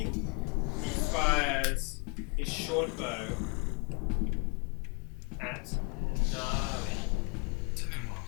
He fires his short bow at Gnarly.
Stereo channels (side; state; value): right; quieter; 31.6 dB